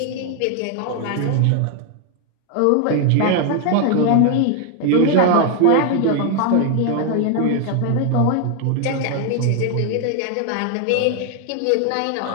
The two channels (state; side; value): different; both; correlation 0.00